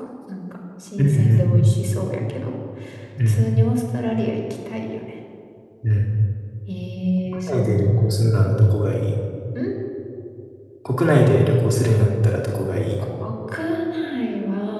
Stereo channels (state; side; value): identical; both; correlation 1.00